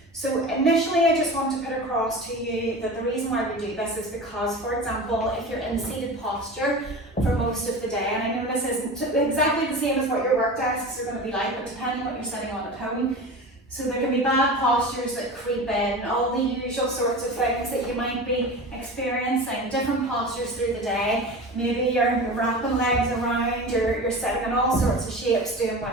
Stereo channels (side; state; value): both; normal; correlation 0.32